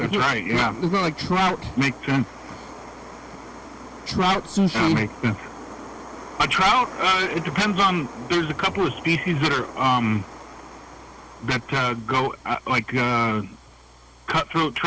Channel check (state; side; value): identical; both; correlation 1.00